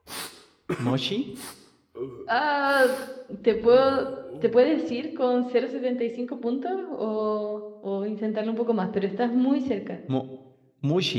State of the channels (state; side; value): identical; both; correlation 1.00